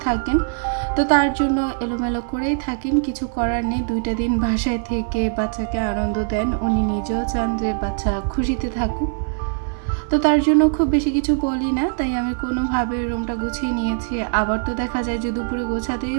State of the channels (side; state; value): left; silent; digital silence